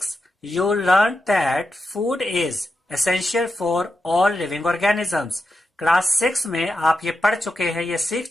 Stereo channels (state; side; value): normal; both; correlation 0.88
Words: you learned that food is essential for all living organisms। Class 6 में आप ये पढ़ चुके हैं, ये सीख